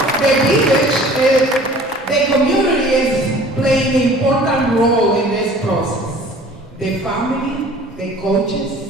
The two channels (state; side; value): normal; both; correlation 0.48